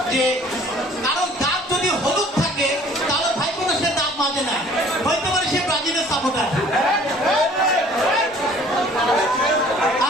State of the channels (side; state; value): both; normal; correlation 0.53